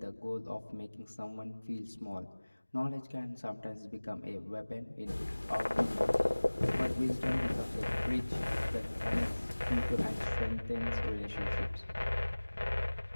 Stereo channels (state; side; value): inverted; both; correlation -1.00